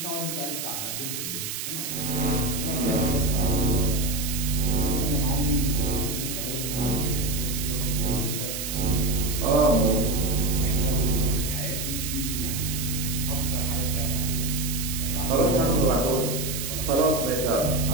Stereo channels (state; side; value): noise; right; hiss, 5 dB below the sound